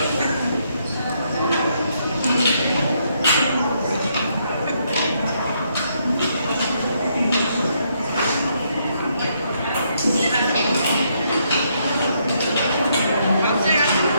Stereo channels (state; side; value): inverted; both; correlation -0.74